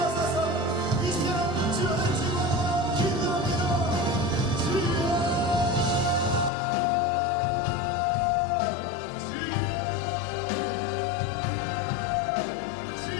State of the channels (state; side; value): drops out; right; at 6.5 s